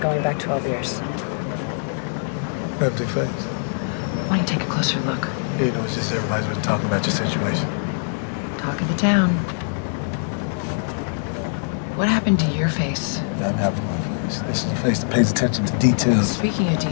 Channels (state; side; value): silent; right; digital silence